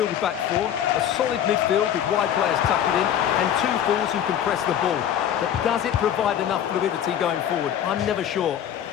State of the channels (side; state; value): right; quieter; 10.0 dB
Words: back four, a solid midfield with wide players tucking in, and two forwards who can press the ball. But does it provide enough fluidity going forward? I'm never sure.